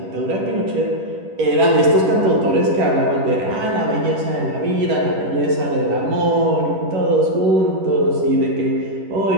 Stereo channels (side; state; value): left; late; 10 ms